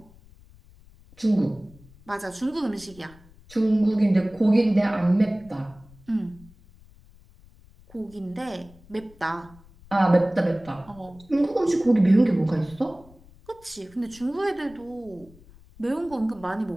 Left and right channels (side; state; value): left; noise; rumble, 25 dB below the sound